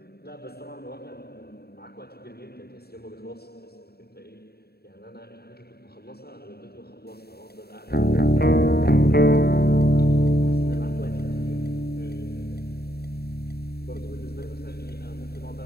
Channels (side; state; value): right; late; 0.46 ms